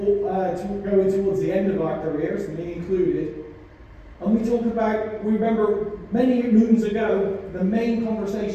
going towards the end of our careers, me included. And we remember many moons ago, the main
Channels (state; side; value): identical; both; correlation 1.00